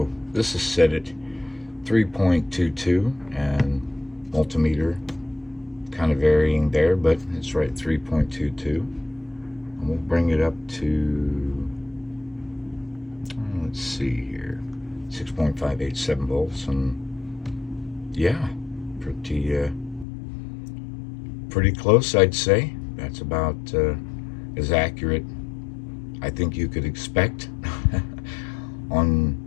this is set at 3.22 and multimeter kind of varying there, but it's right 3.22. And we'll bring it up to, let's see here, 6.587 volts, and yeah, pretty close, I'd say. That's about as accurate I think you could expect on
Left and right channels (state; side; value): drops out; right; at 20.1 s